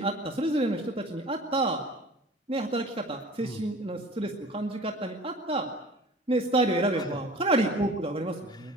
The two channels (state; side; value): normal; both; correlation 0.43